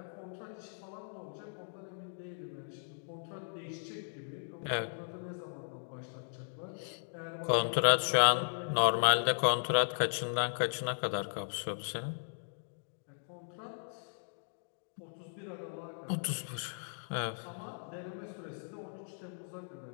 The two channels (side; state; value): right; silent; digital silence